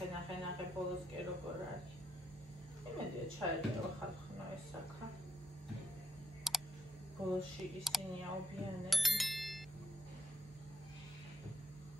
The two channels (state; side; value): normal; both; correlation 0.76